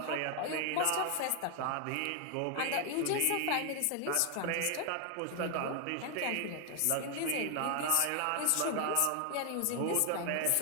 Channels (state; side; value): different; both; correlation 0.00